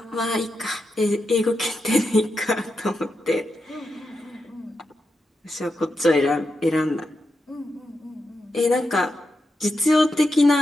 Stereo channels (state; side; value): normal; both; correlation 0.87